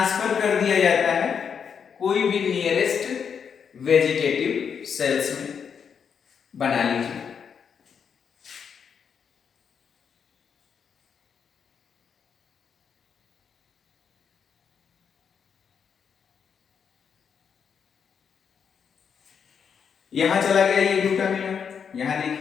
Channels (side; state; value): right; quieter; 7.0 dB